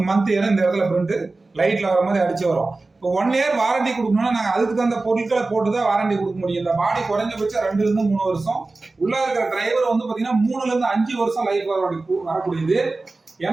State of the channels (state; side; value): quieter; left; 3.4 dB